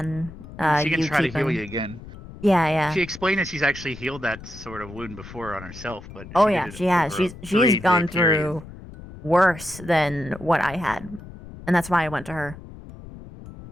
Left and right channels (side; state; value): left; noise; rumble, 15 dB below the sound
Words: She can try to heal you again. Yeah. She explained that she's actually healed that sort of wound before on herself, but She has. She's gone through worse than what I had, and that's why I went to her.